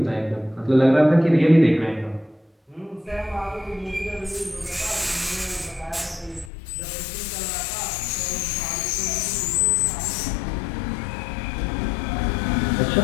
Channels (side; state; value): right; drops out; at 6.5 s